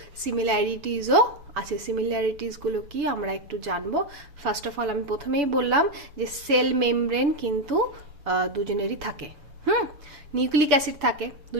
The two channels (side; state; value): left; late; 6.9 ms